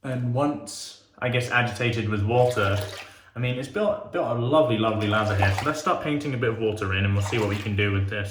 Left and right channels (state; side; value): identical; both; correlation 1.00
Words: And once, I guess, agitated with water, I mean, it's built a lovely, lovely lather here. So let's start painting a bit of water in, and we'll see what we can do with